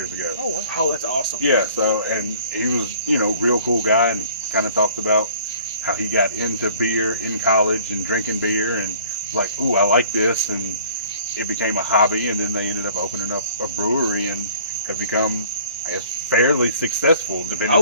ago. Oh, wow. Oh, that's awesome. Yeah, and he was, real cool guy, and kind of talked about how he got into beer in college and drinking beer, and like, ooh, I like this, and it became a hobby, and then they ended up opening up a brewery and have become, I guess, fairly successful, depending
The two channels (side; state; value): both; inverted; correlation -0.52